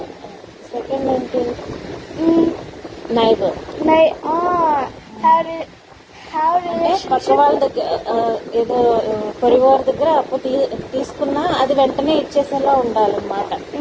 second ఏంటి? నైబర్. have పక్క relationship. వాళ్ళ దగ్గర ఏదో పొరివారి దగ్గర అప్పు తీసుకున్నా అది వెంటనే ఇచ్చేసేలా ఉండాలన్నమాట.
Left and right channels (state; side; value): identical; both; correlation 1.00